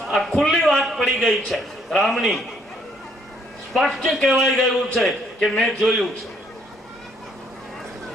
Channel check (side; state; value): both; normal; correlation 0.67